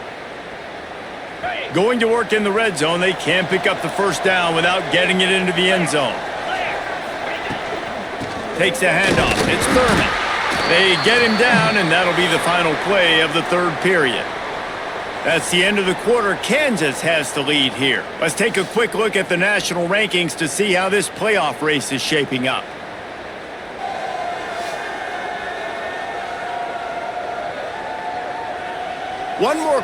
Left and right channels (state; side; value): identical; both; correlation 1.00